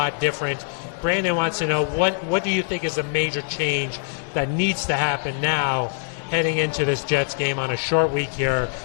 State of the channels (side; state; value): right; silent; 63 dB below the other